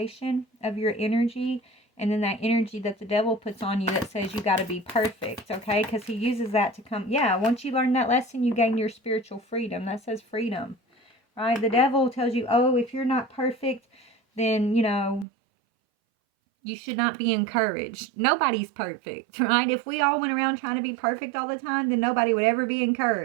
of your energy and then that energy that the devil puts on you that says you got to be perfect, okay? Because he uses that to come. Yeah, once you learn that lesson, you gain your spiritual freedom. That says freedom, right? The devil tells you, oh, if you're not perfect, then, you know, you should not be encouraged. Nobody's perfect, right? If we all went around trying to be perfect all the time, then nobody would ever be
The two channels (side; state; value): left; drops out; at 15.2 s